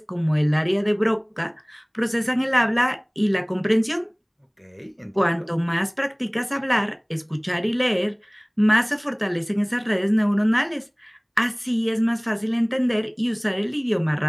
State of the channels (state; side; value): identical; both; correlation 1.00